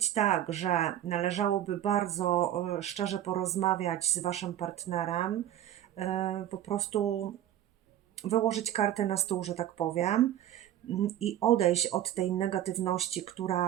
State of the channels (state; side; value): quieter; left; 12.0 dB